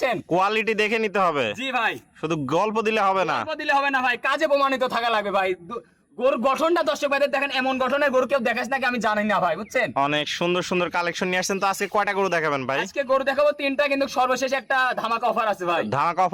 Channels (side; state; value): both; identical; correlation 1.00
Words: কোয়ালিটি দেখে নিতে হবে। জি ভাই, শুধু গল্প দিলে হবে না। গল্প দিলে হবে না ভাই, কাজে প্রমাণিত থাকা লাগবে ভাই। গরুর গঠনটা দর্শক ভাইদের দেখেন, এমন গঠনের গরু কেউ দেখাস নাকি আমি জানি না ভাই, বুঝছেন? অনেক সুন্দর সুন্দর কালেকশন নিয়ে আসছেন। তো আজকে কয়টা গরু দেখাবেন ভাই? আজকে গরু দেখাবো তিনটা, কিন্তু সর্বশেষ একটা ধামাকা অফার আছে ভাই। ধামাকা